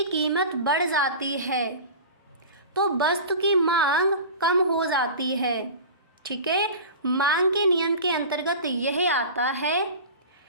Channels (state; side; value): inverted; both; correlation -0.34